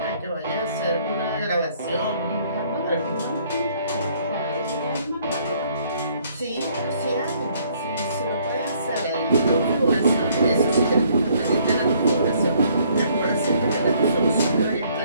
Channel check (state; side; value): inverted; both; correlation -0.64